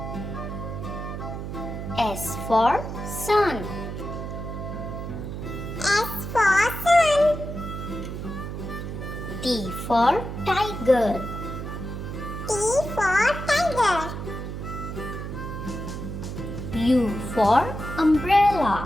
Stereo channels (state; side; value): noise; right; hum, 7 dB below the sound